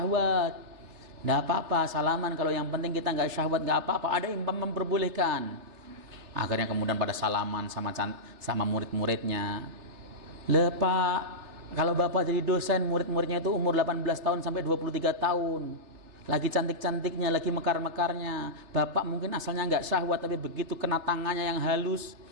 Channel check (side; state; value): left; late; 3.3 ms